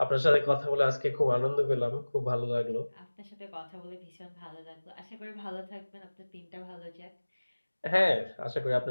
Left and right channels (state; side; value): inverted; both; correlation -1.00